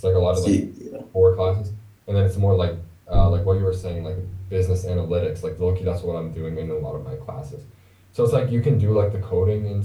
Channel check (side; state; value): both; identical; correlation 1.00